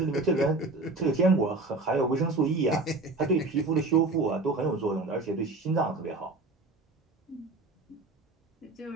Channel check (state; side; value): quieter; left; 3.2 dB